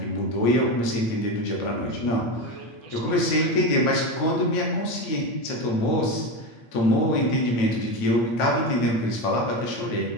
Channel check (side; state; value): right; late; 9.1 ms